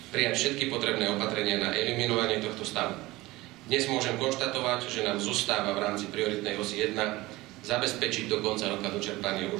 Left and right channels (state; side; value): quieter; left; 19.7 dB